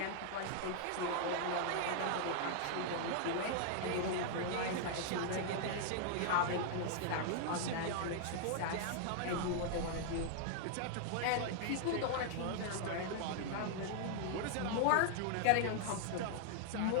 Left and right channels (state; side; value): different; both; correlation 0.00